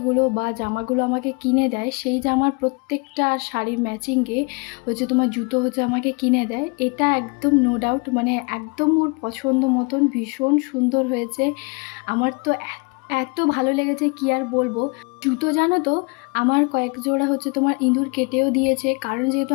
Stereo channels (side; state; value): right; quieter; 30.7 dB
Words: বা জামাগুলো আমাকে কিনে দেয়, সেই জামার প্রত্যেকটা শাড়ির ম্যাচিংয়ে তোমার জুতো আমাকে কিনে দেয়। এটা একদম নো ডাউট, মানে একদম ওর পছন্দ মতন ভীষণ সুন্দর হয়েছে। আমার তো এত ভালো লেগেছে, কি আর বলবো। জুতো জানো তো, আমার কয়েক জোড়া তোমার ইঁদুর কেটেও দিয়েছে, কারণ যেহেতু